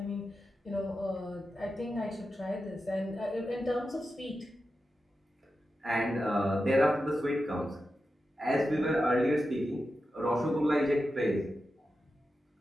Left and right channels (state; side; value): normal; both; correlation 0.90